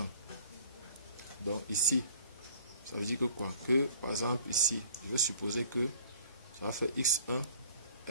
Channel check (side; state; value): both; inverted; correlation -0.53